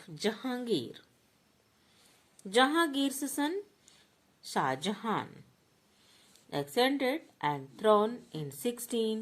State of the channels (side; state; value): both; identical; correlation 1.00